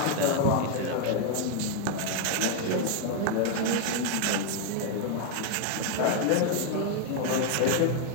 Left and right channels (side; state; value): both; different; correlation 0.00